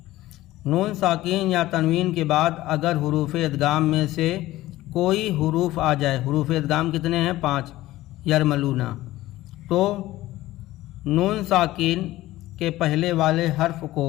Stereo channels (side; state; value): right; quieter; 16.5 dB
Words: نون ساکن یا تنوین کے بعد اگر حروف ادغام میں سے کوئی حروف آ جائے، حروف ادغام کتنے ہیں؟ 5، یرملون، تو نون ساکن کے پہلے والے حرف کو